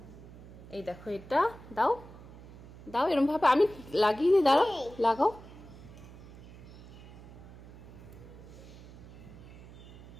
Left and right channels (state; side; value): noise; right; hum, 17 dB below the sound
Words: এই দেখো এটা দাও দাও এরকম ভাবে আমি লাগিয়ে দিই। দাঁড়াও লাগাও।